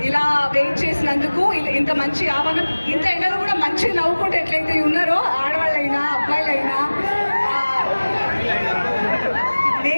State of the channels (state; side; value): inverted; both; correlation -1.00